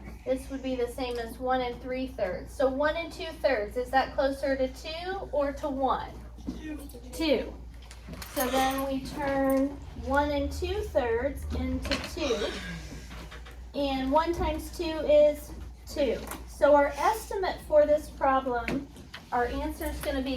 this would be the same as 1 3/3. So 1 2/3, is that closer to 2 or to 1? 2. So then we turn 1 2/3 into 2. And 1 times 2 is 2. So our estimate for this problem, our answer is going to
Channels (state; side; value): identical; both; correlation 1.00